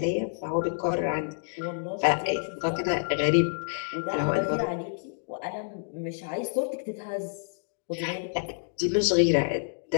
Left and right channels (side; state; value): right; silent; digital silence